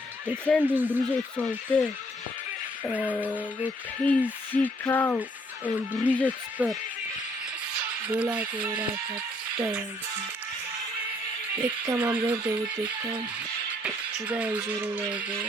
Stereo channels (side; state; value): both; normal; correlation 0.66